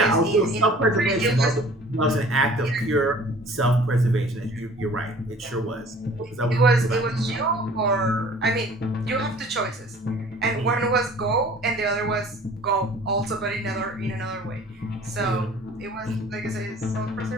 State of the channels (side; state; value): both; normal; correlation 0.49